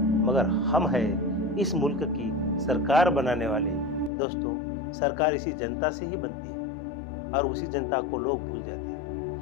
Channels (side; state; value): right; drops out; at 4.1 s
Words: हम हैं इस मुल्क की सरकार बनाने वाले। दोस्तों, सरकार इसी जनता से ही बनती है और उसी जनता को लोग भूल जाते